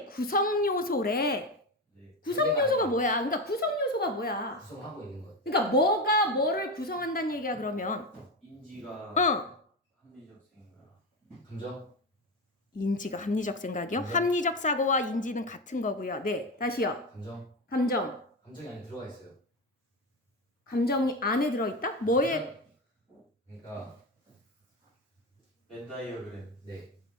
구성 요소래. 네. 구성 요소가 뭐야? 그러니까 구성 요소가 뭐야? 구성하고 있는 것. 그러니까 뭐가 뭐를 구성한다는 얘기야 그러면? 인지가 합리적 생각 감정? 인지가 합리적 생각이요? 네. 합리적 사고와 인지는 같은 거고요. 네, 다시요. 감정? 감정이 안에 들어가 있어요. 안에 들어있다? 뭐에? 그러니까 벤다이어그램 네.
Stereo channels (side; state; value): both; normal; correlation 0.17